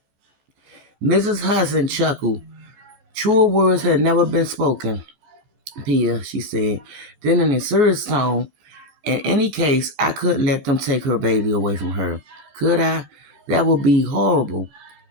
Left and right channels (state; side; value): late; left; 14 ms